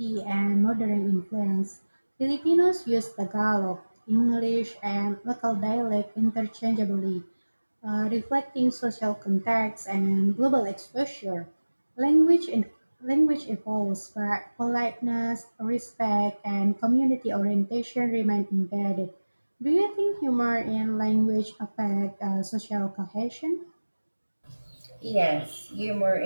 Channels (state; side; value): inverted; both; correlation -1.00